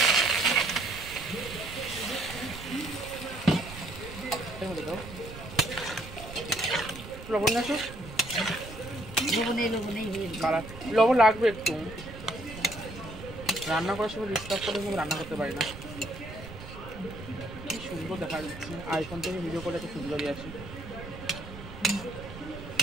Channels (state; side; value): noise; right; rumble, 13 dB below the sound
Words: লবণ আসো, লবণ লাগবে একটু। রান্না করার সময় ডিস্টার্ব করে কিন্তু রান্না করতে পারি না। কি সুন্দর দেখা যাচ্ছে, আইফোন থেকে ভিডিও করে এত সুন্দরই আসে।